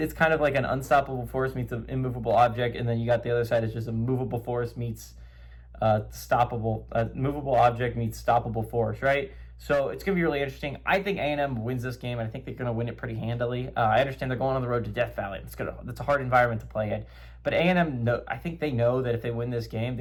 kind of like an unstoppable force meets an immovable object, and then you got the other side is just a movable force meets movable object meets stoppable force, right? So it's going to be really interesting. I think A&M wins this game, and I think they're going to win it pretty handily. I understand they're going on the road to Death Valley. That's a hard environment to play in. But A&M, I think they know that if they win this game,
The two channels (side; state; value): both; identical; correlation 1.00